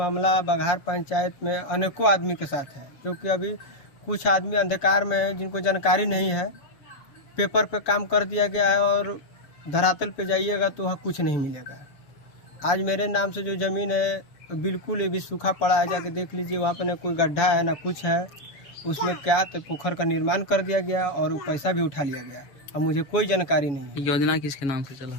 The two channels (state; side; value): late; right; 7.2 ms